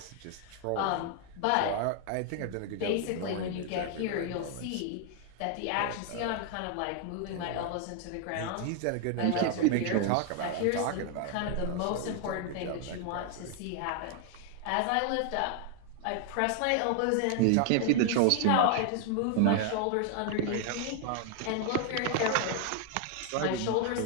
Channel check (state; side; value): different; both; correlation 0.00